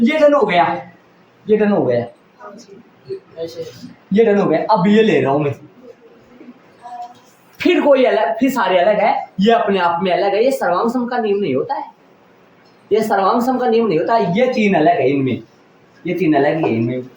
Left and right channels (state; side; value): identical; both; correlation 1.00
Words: डन हो गया, ये डन हो गया, ऐसे ये डन हो गया। अब ये ले रहा हूं मैं, फिर कोई अलग, फिर सारे अलग है, ये अपने आप में अलग है, ये सर्वांग सम का नियम नहीं होता है, ये सर्वांग सम का नियम नहीं होता है, ये 3 अलग है इनमें, ये 3 अलग है इनमें।